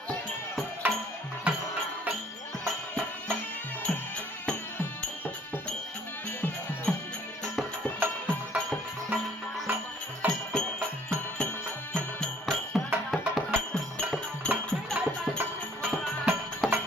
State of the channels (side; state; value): both; normal; correlation 0.59